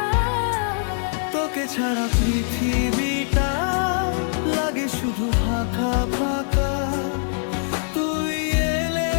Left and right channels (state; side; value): silent; right; digital silence